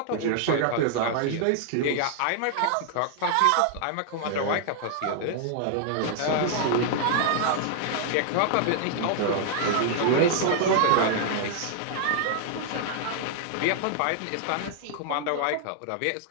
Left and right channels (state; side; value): different; both; correlation -0.01